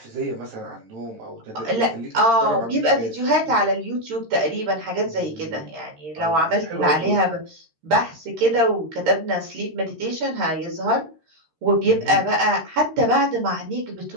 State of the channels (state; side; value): late; left; 13 ms